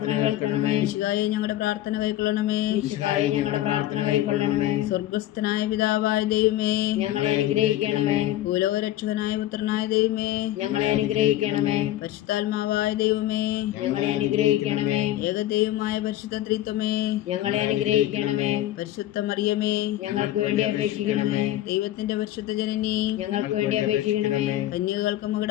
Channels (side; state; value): right; quieter; 14.0 dB